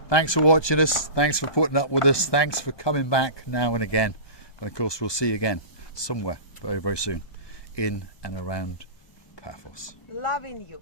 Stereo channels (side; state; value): right; late; 1.2 ms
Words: Thanks for watching us. Thanks for putting up with us. Thanks for coming back now and again. And of course, we'll see you again somewhere very, very soon in and around Paphos. Loving you.